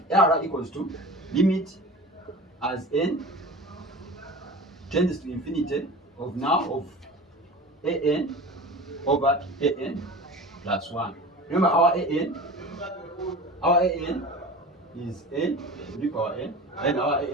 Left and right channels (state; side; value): normal; both; correlation 0.35